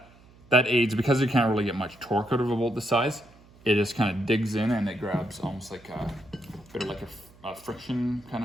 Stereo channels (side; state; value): right; noise; hum, 26 dB below the sound